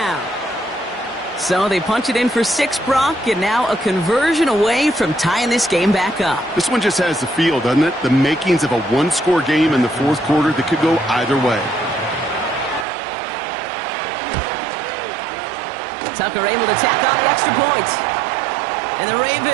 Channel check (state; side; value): drops out; left; at 12.9 s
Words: So they punch it in for 6, Brock, and now a conversion away from tying this game back up. This one just has the feel, doesn't it? The makings of a one-score game in the fourth quarter that could go either way. Tucker able to tack on the extra points. And the